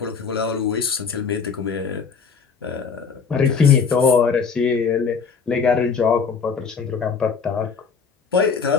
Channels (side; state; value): right; quieter; 5.7 dB